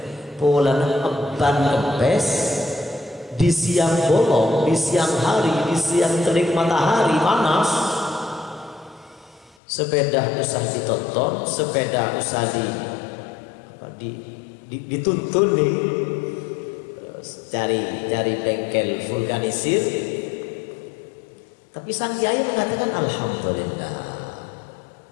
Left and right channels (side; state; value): right; drops out; at 9.6 s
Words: polana ban kempes di siang bolong, di siang hari, di siang terik matahari panas? Sepeda usah ditonton, sepeda usah dituntun nih. Cari bengkel vulkanisir. Tapi sang kiai mengatakan alhamdulillah.